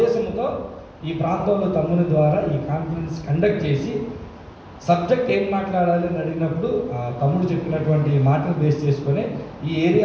ఈ ప్రాంతంలో తమ్ముని ద్వారా ఈ కాన్ఫరెన్స్ కండక్ట్ చేసి సబ్జెక్ట్ ఏం మాట్లాడాలి అని అడిగినప్పుడు తమ్ముడు చెప్పినటువంటి మాటలు బేస్ చేసుకొని ఈ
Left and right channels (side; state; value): both; identical; correlation 1.00